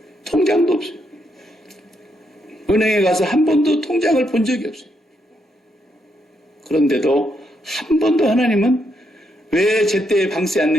통장도 없어요. 은행에 가서 한 번도 통장을 본 적이 없어요. 그런데도 한 번도 하나님은 왜 제때에 방세 안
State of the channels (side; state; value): both; normal; correlation 0.78